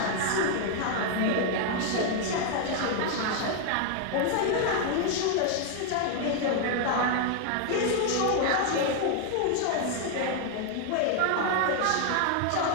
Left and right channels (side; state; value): both; different; correlation 0.00